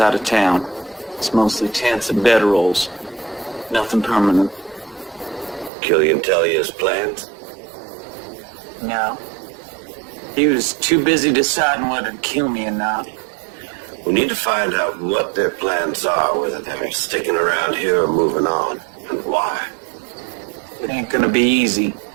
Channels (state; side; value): drops out; left; at 5.7 s